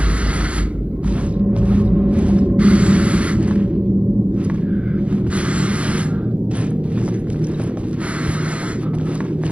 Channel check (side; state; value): left; late; 0.062 ms